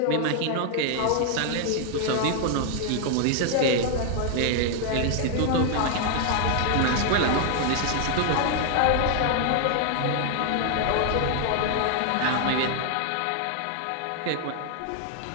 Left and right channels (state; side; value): different; both; correlation 0.00